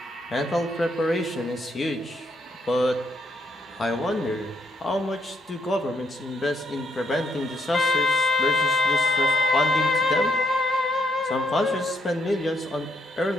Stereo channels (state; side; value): normal; both; correlation 0.74